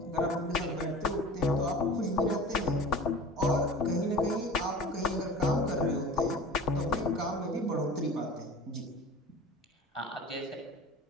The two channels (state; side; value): normal; both; correlation 0.39